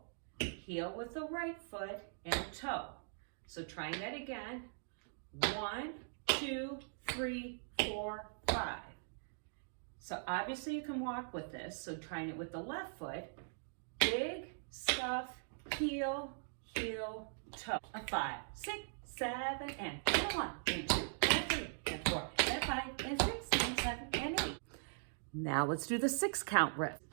heel with the right foot, and toe. So trying that again. 1, 2, 3, 4, 5. So obviously you can walk with this. So trying it with the left foot. Dig, scuff, heel, heel, toe. 5, 6, 7, and 1, and 2, and 3, and 4, and 5, and 6, and 7, and 8. Now let's do the 6 count riff.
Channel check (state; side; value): silent; left; digital silence